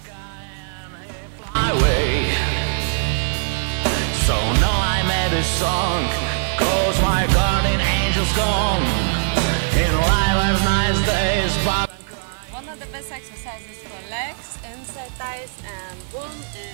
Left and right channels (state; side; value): silent; left; digital silence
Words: Highway. So now I made a song, 'cause my guardian angel's gone. In life are nice days, but one of the best exercises for legs, inside thighs, and boom